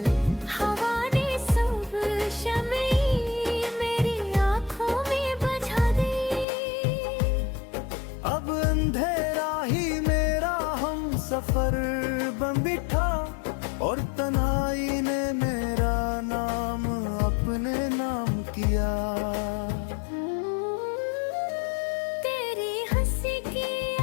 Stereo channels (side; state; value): right; drops out; at 6.5 s